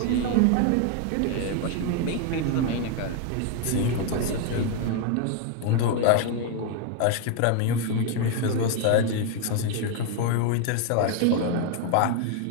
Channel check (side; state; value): both; different; correlation 0.00